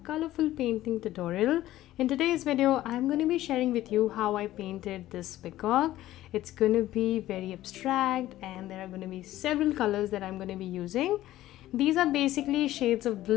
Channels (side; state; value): right; quieter; 14.7 dB